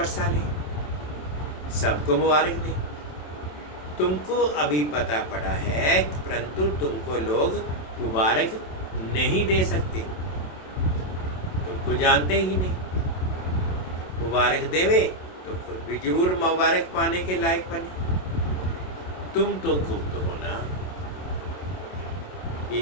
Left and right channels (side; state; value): right; late; 27 ms